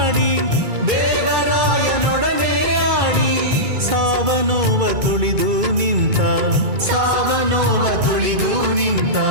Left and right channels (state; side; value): late; left; 2.3 ms